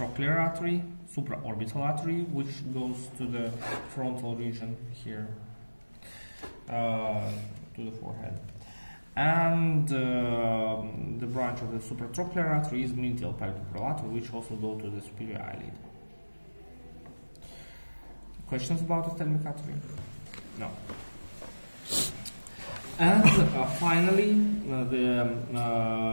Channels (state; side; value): inverted; both; correlation -1.00